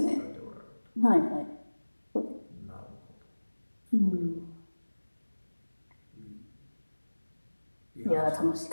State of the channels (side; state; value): both; inverted; correlation -1.00